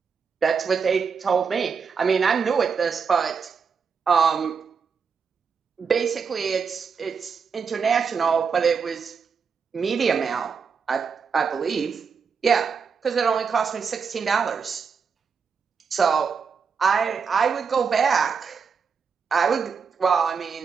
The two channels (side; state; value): left; quieter; 5.9 dB